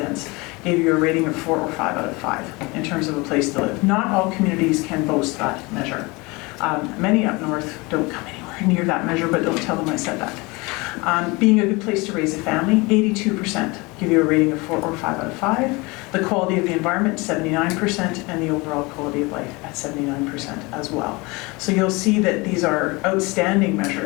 gave you a rating of 4 or 5 out of 5 in terms of a place to live. Not all communities can boast that measure. Many up north don't come anywhere near that measure, but don't tell them I said that. Being a good place to raise a family, 82% give you a rating of 4 or 5 out of 5. The quality of the environment, 79%, and the overall quality of life at 79% as well. So you'll see that these are outstanding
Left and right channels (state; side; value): quieter; right; 25.1 dB